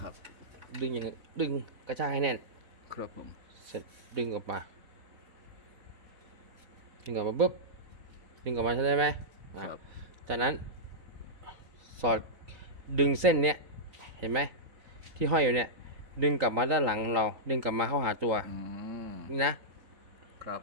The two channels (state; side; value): late; left; 3.8 ms